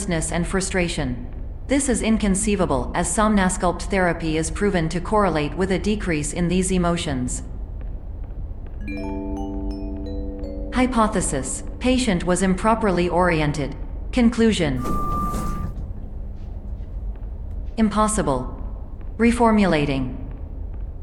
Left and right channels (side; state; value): both; identical; correlation 1.00